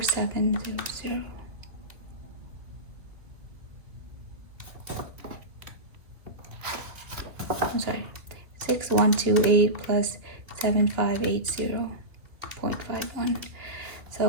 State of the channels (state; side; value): late; left; 2.6 ms